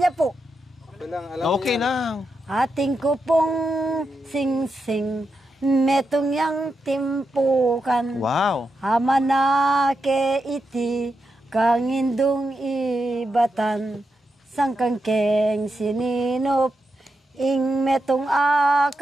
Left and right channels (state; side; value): normal; both; correlation 0.86